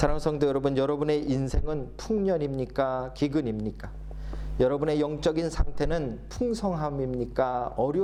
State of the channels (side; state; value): both; identical; correlation 1.00